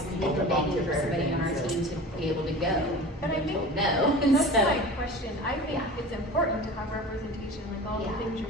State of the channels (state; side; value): normal; both; correlation 0.37